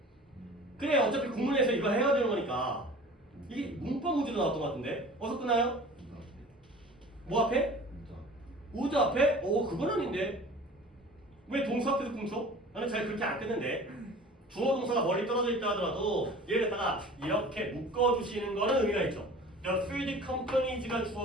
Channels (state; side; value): normal; both; correlation 0.43